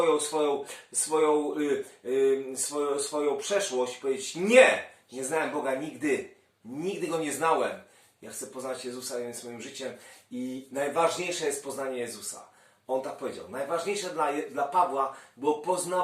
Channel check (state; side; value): identical; both; correlation 1.00